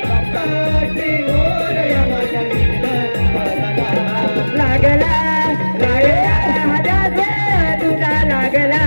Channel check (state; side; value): inverted; both; correlation -1.00